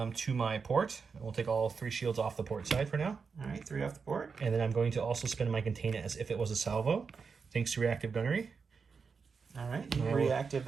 to my port. We'll take all 3 shields off the port side for now. All right, 3 off the port. And then I'm going to also spin my container as if it was a salvo, thanks to reactive gunnery. All right, you reactive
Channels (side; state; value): left; quieter; 5.4 dB